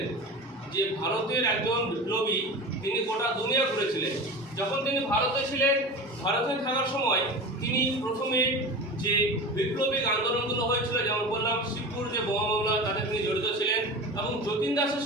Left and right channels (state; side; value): normal; both; correlation 0.31